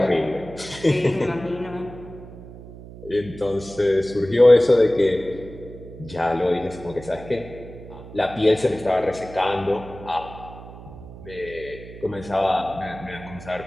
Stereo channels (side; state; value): right; noise; hum, 15 dB below the sound